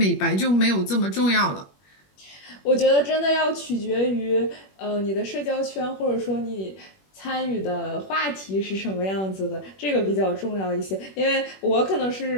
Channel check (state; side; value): late; right; 21 ms